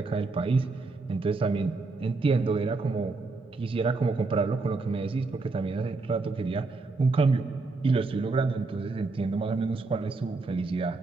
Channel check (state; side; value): quieter; left; 3.7 dB